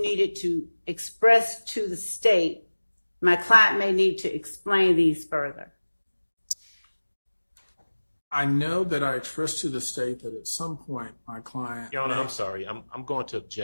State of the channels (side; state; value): both; inverted; correlation -1.00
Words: needed to express to the state, my client may need to explain these further? I know that I expressed to the state that at some point my client... Your Honor, I'm sorry. I'm going to